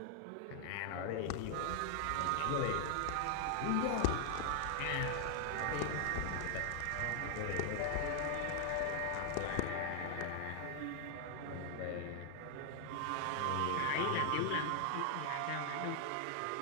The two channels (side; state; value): both; different; correlation 0.00